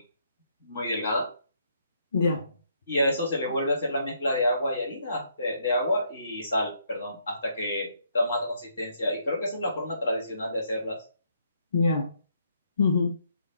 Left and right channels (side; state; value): both; inverted; correlation -0.72